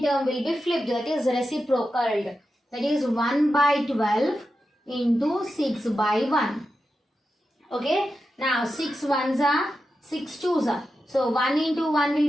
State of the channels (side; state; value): both; normal; correlation 0.90